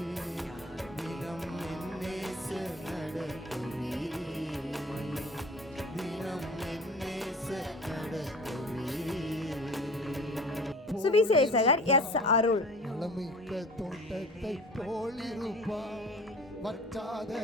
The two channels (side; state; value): both; normal; correlation 0.42